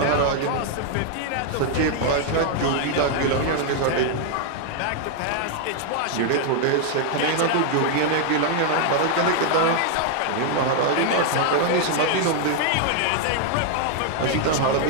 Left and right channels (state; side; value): different; both; correlation 0.00